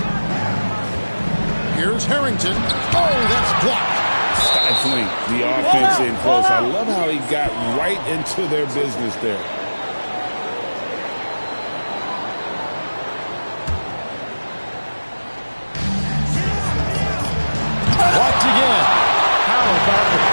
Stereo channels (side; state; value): both; inverted; correlation -1.00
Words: Here's Harrington. Oh, that's blocked. Stifling the offense in close. I love how he got right into their business there. Blocked again. How about the